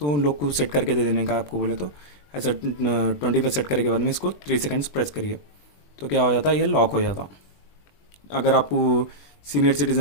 उन लोग को सेट करके दे देने का आपको बोले तो ऐसा 20 पे सेट करने के बाद में इसको 3 सेकंड्स प्रेस करिए तो क्या हो जाता है, ये लॉक हो जाता। अगर आपको सीनियर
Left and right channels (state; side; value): late; right; 20 ms